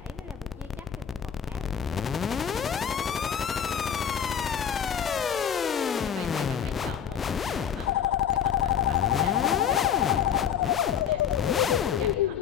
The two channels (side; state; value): right; quieter; 8.3 dB